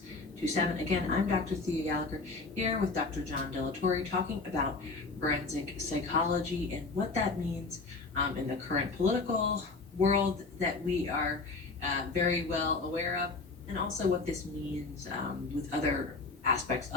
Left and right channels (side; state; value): right; quieter; 3.8 dB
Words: Again, I'm Dr. Thea Gallagher here with Dr. John Delatorre talking about forensic psychology and what that means in the current political world that we are very well aware of, and also what this means with other aspects